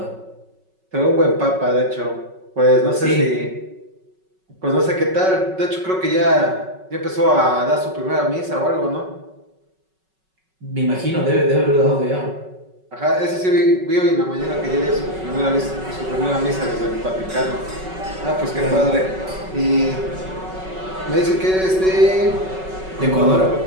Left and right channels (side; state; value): left; late; 5.3 ms